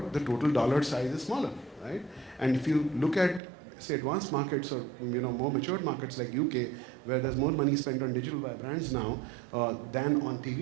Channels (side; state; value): left; drops out; at 3.4 s